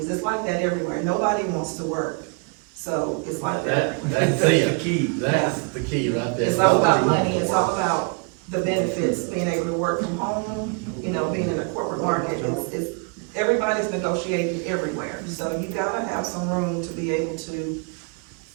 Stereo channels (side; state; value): left; quieter; 35.5 dB